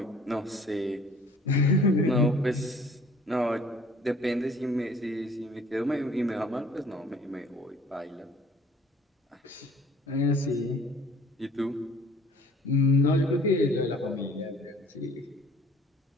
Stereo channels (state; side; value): normal; both; correlation 0.53